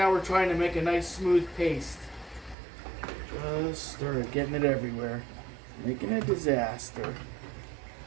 we're trying to make a nice smooth paste. Just stir it, getting it everywhere. Making a disaster.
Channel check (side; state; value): left; drops out; at 2.6 s